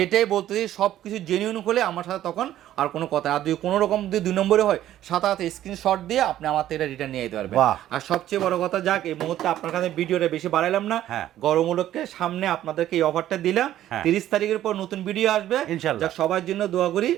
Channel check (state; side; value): quieter; left; 12.6 dB